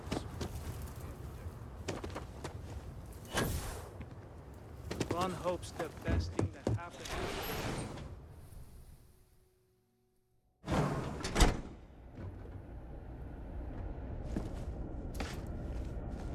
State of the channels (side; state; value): both; identical; correlation 1.00